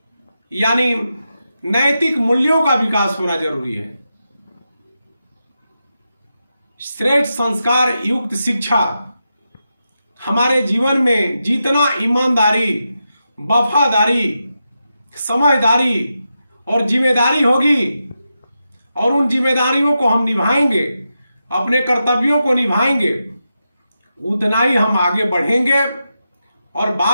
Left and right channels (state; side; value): inverted; both; correlation -0.88